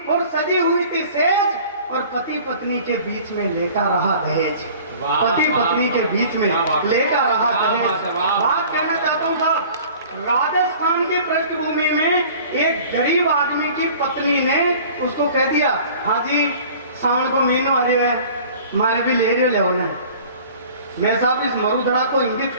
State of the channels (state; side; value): inverted; both; correlation -0.46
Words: और सजी हुई थी सेज, और पति पत्नी के बीच में लेटा रहा दहेज। पति पत्नी के बीच में लेटा रहा दहेज। बात कहना चाहता हूँ साहब, राजस्थान की पृष्ठभूमि में एक गरीब आदमी की पत्नी ने उसको कह दिया, हाँ जी सावन को महीनों आ रहे हैं, मारे भी ले रहे हो ना। मैं साहब इस मरुधरा को इंगित